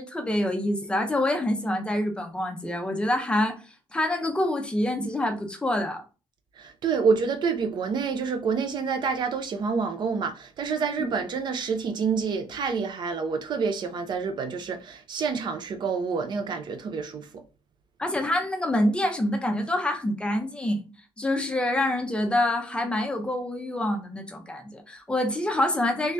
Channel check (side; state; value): both; normal; correlation 0.71